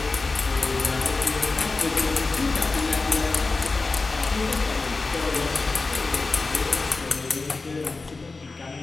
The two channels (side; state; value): right; quieter; 3.8 dB